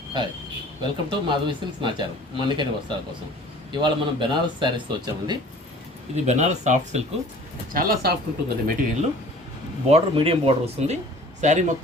Hi, welcome to Madhavi silks Nacharam మన్నికని వస్త్రాల కోసం. ఇవాళ మనం బెనారస్ శారీస్తో వచ్చామండి. ఇది బెనారస్ సాఫ్ట్ సిల్క్, చాలా సాఫ్ట్ ఉంటుందండి మెటీరియల్. బార్డర్ మీడియం బార్డర్ వస్తుంది. శారీ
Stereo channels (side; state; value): both; normal; correlation 0.48